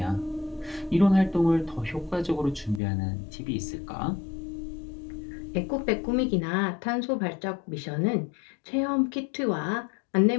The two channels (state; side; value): drops out; right; at 2.8 s